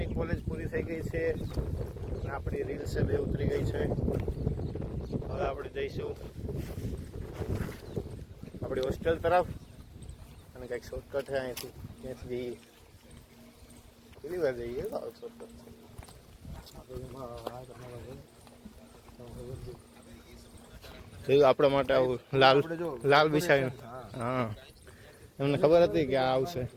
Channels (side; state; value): both; identical; correlation 1.00